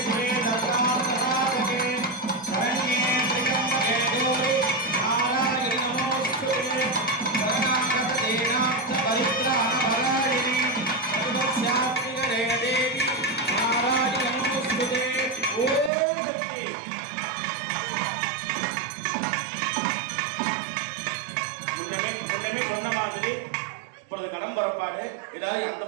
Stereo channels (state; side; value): drops out; left; at 15.9 s